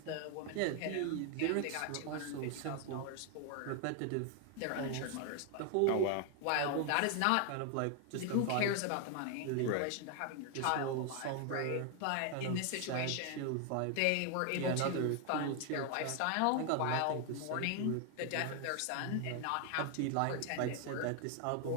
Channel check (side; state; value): both; different; correlation 0.00